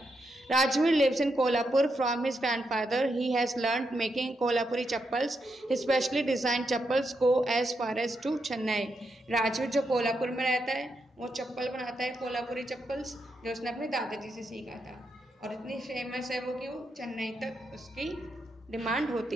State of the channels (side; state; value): both; normal; correlation 0.83